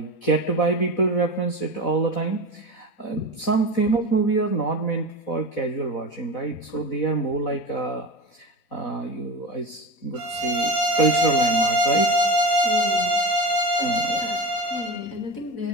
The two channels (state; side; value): late; right; 4.1 ms